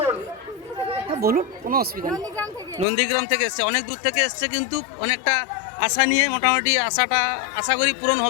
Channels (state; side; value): drops out; right; at 2.9 s